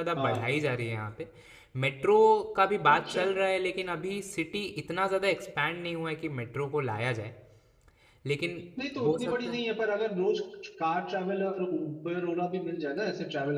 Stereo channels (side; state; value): both; identical; correlation 1.00